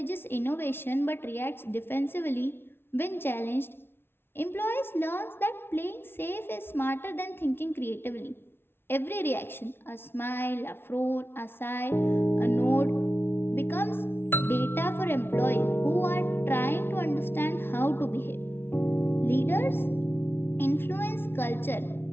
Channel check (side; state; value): right; late; 0.11 ms